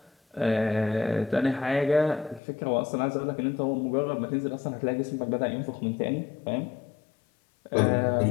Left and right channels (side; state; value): right; drops out; at 2.4 s